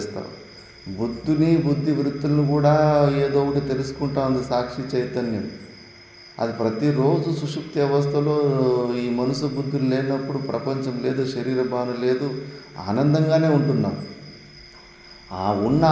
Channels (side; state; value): both; identical; correlation 1.00